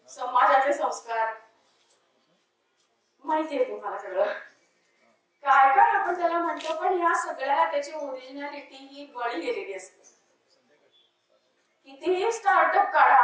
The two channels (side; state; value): both; identical; correlation 1.00